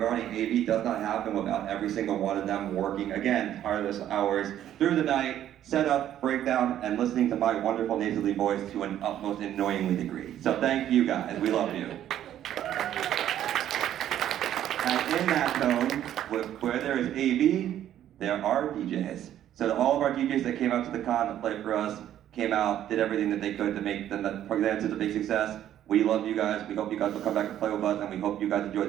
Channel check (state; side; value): quieter; left; 11.4 dB